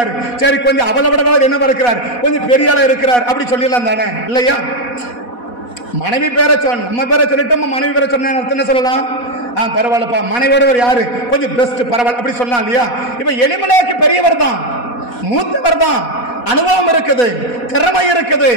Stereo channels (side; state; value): right; late; 4.1 ms